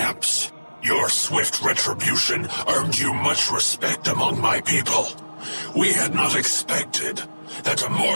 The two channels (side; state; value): both; inverted; correlation -1.00